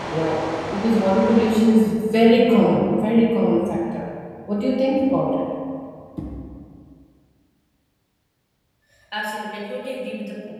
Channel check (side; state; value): both; identical; correlation 1.00